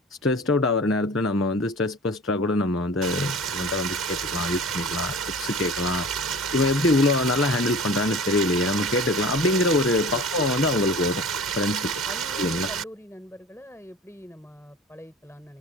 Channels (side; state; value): both; normal; correlation 0.40